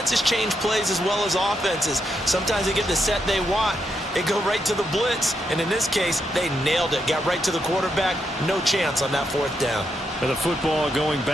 change plays as well as offenses. Sometimes they get the set they want, they go right to the blitz, and in this case, they nailed it, got right to the quarterback, no chance on that 4th down. And the football going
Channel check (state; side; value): normal; both; correlation 0.81